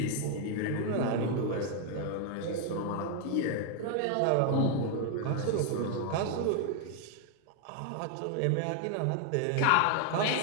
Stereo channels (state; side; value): different; both; correlation 0.00